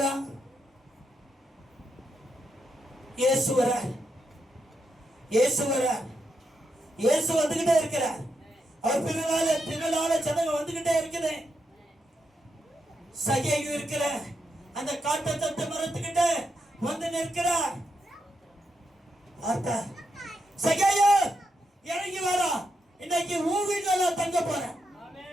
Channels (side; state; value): both; normal; correlation 0.83